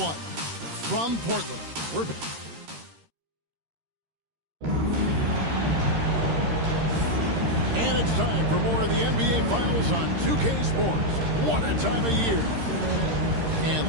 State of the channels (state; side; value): late; left; 13 ms